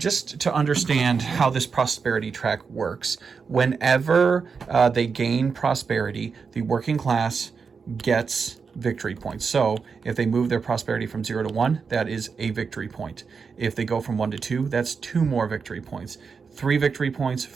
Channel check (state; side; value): quieter; left; 5.5 dB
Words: to understand how this prosperity track works, whenever they gain prosperity, the working class gets victory points. So if they move their prosperity from 0 to 1, that is a victory point. If they go from 1 to 2, that's 2 more victory points. 3 victory points,